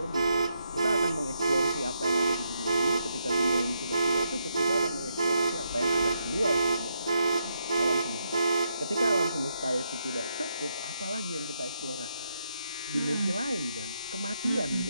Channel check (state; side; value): inverted; both; correlation -0.80